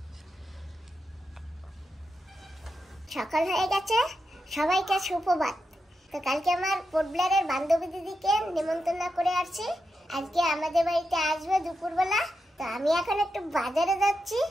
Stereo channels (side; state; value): both; normal; correlation 0.87